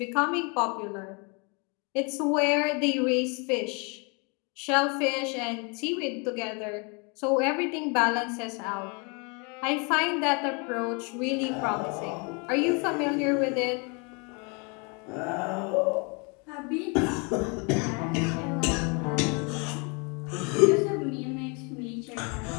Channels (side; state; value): right; quieter; 32.8 dB